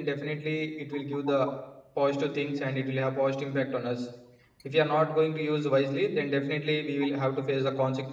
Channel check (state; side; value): identical; both; correlation 1.00